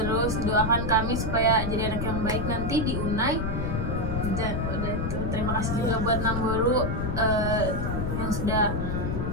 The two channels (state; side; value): noise; left; rumble, 2 dB below the sound